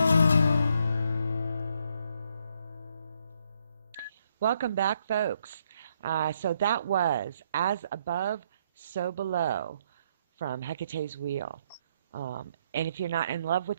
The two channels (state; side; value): inverted; both; correlation -0.73